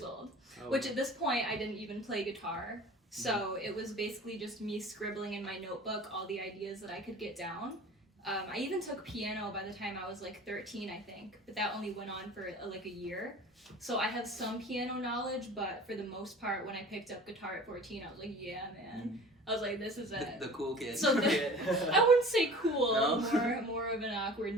old, which at this point I didn't even play guitar. So it was basically just me scribbling in my notebook all the ideas that I could get down. I even took piano by the time I was like 13, I think, but that only went on for like a year. So I have some piano knowledge, but for the most part, when I picked up guitar at 14, I was like, yeah, man. I was like, this is it. The cool kid. So I wouldn't say cool, more of an awkward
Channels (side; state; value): both; normal; correlation 0.42